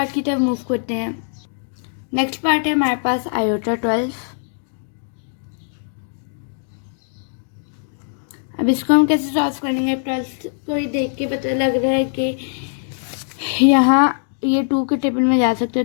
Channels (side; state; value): right; silent; digital silence